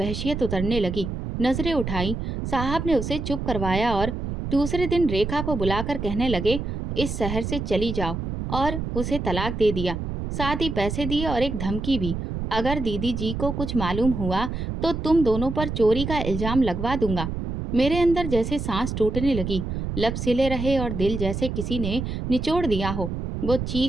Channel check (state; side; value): noise; right; rumble, 4 dB below the sound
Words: उतरने लगी। नजरें उठाई, साहब ने उसे चुप करवाया और दूसरे दिन रेखा को बुलाकर कहने लगे, इस शहर से चली जाओ, और उसे तलाक दे दिया। साथ ही पैसे दिए और एक धमकी भी, अगर दीदी जी को कुछ मालूम हुआ तो तुम दोनों पर चोरी का इल्जाम लगवा दूंगा। मेरे अंदर जैसे सांस टूटने लगी, लब सिले रहे और दिल जैसे किसी ने निचोड़ दिया हो। वो